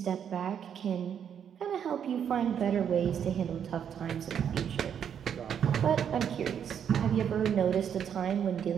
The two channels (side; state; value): left; quieter; 8.4 dB